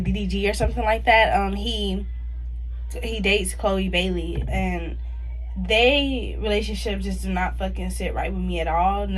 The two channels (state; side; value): identical; both; correlation 1.00